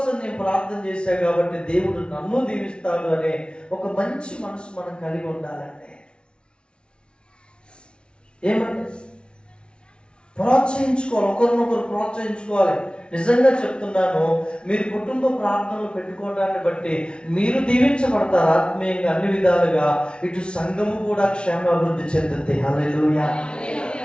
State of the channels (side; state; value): right; late; 0.057 ms